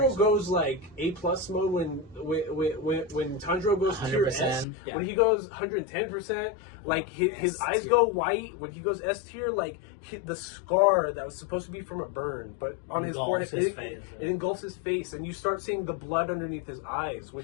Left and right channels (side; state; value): right; drops out; at 4.7 s